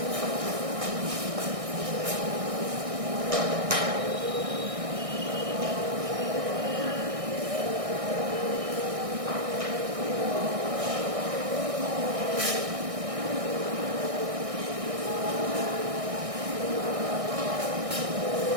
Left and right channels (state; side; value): late; left; 1.6 ms